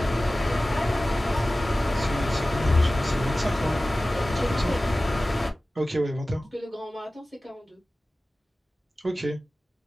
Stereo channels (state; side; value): normal; both; correlation 0.97